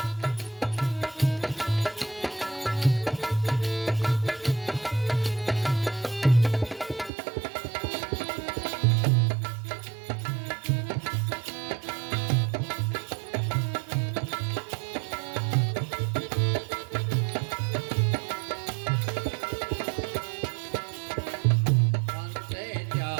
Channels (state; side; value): drops out; left; at 7.1 s